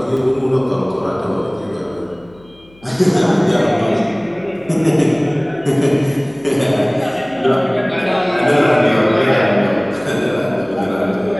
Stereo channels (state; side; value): noise; left; hum, 27 dB below the sound